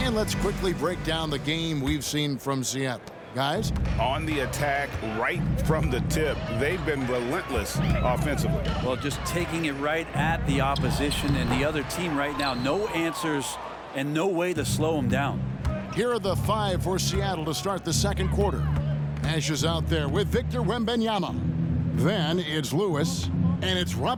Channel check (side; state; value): both; identical; correlation 1.00